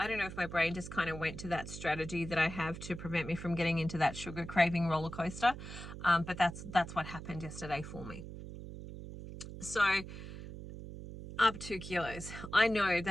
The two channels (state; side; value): noise; right; hum, 10 dB below the sound